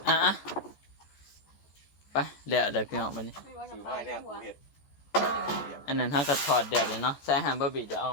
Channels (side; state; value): right; late; 14 ms